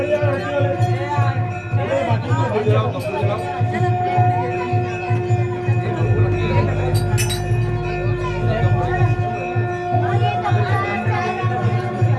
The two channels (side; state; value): both; identical; correlation 1.00